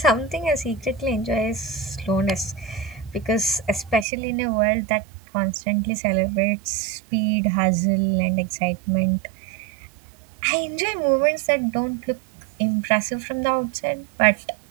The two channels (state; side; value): drops out; left; at 4.0 s